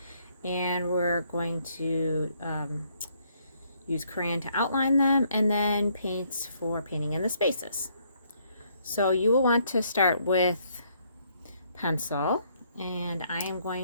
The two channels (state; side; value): inverted; both; correlation -0.69